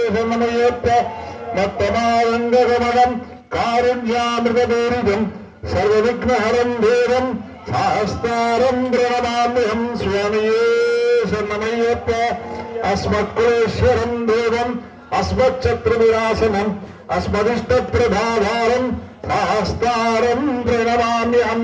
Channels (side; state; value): both; identical; correlation 1.00